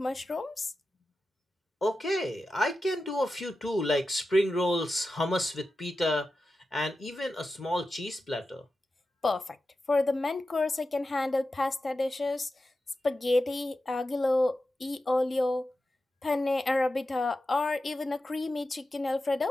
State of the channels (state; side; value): normal; both; correlation 0.92